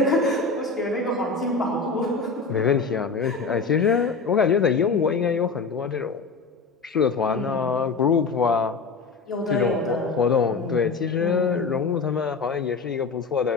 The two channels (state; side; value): quieter; right; 4.5 dB